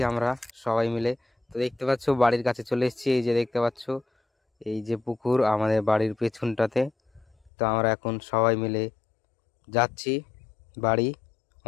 আমরা সবাই মিলে। তো দেখতে পাচ্ছ বাড়ির কাছে চলে এসেছি, এই যে দেখতে পাচ্ছ এই যে পুকুর আমাদের বাড়ির পেছনটাতে। তো আমরা এখন সবাই মিলে যাচ্ছি বাড়ি,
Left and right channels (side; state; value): right; drops out; at 7.5 s